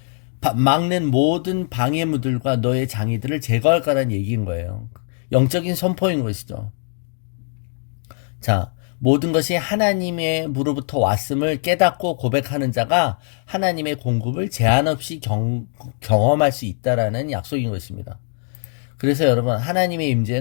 막는 모든 방해물들과 너의 장애들을 제거할 거라는 얘기인 거예요. 영적인 선포인 것이죠. 자, 모든 것이 하나님의 무로부터 왔음을 깨닫고 고백하는 자가 하나님의 공급을 제한 없이 경험할 수 있다라는 약속인 것입니다. 그래서 여러분 하나님의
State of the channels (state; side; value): silent; right; 56 dB below the other